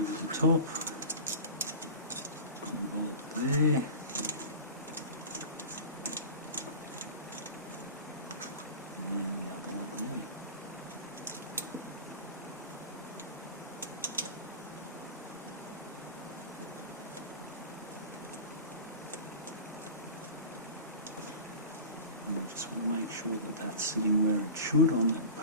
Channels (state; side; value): inverted; both; correlation -0.34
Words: the top, one bolt there, and the other one there. And I just want to make sure that that's sitting where it should on that